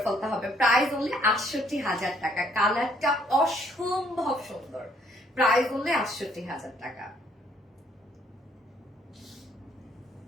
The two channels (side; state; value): both; normal; correlation 0.66